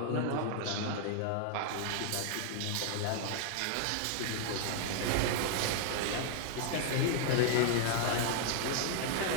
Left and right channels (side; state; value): both; different; correlation 0.00